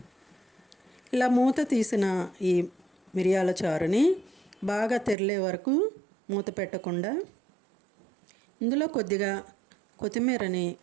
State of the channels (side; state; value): left; drops out; at 5.2 s